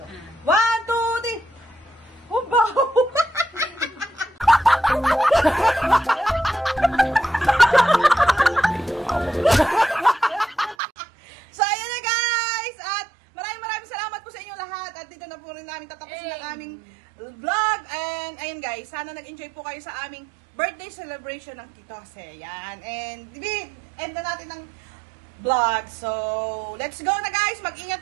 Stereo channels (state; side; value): drops out; left; at 10.8 s